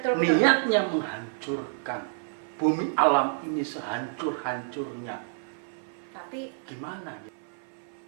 Niatnya menghancurkan bumi alam ini sehancur-hancurnya. Tapi gimana?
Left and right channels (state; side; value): silent; left; 55 dB below the other